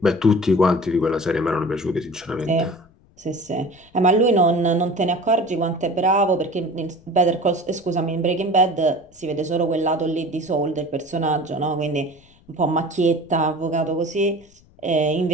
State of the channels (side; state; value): left; noise; rumble, 29 dB below the sound